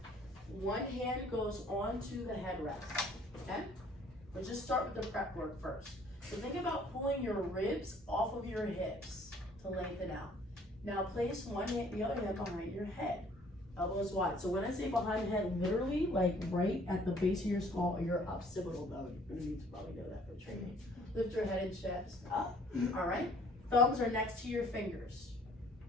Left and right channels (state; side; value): normal; both; correlation 0.58